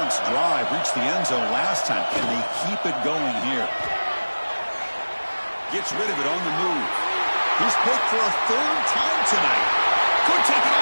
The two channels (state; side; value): inverted; both; correlation -1.00